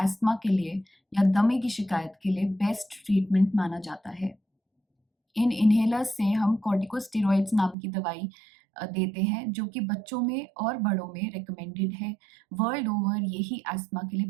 के लिए या दमे की शिकायत के लिए बेस्ट ट्रीटमेंट माना जाता है। इन इन्हेलर्स से हम कॉर्टिकोस्टेरॉइड्स नाम की दवाई देते हैं जो कि बच्चों में और बड़ों में रिकमेंडेड है। वर्ल्ड ओवर यही अस्थमा के लिए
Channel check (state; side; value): drops out; left; at 7.8 s